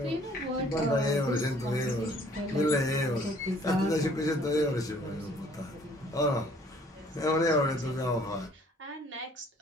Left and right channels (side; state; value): both; normal; correlation 0.58